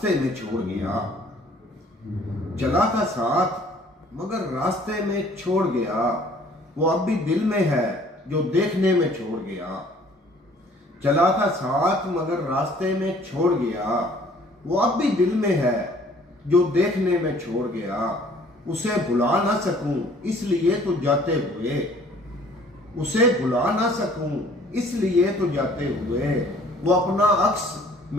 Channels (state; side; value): normal; both; correlation 0.56